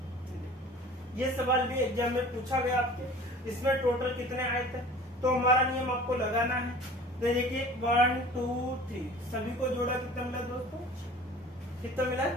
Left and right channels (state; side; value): normal; both; correlation 0.44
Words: ये सवाल भी एग्जाम में पूछा गया आपके, इसमें टोटल कितने आयत है, तो हमारा नियम आपको लगाना है। तो देखिए 1 2 3 सभी को जोड़ा कितना मिला दोस्तों, कितना मिला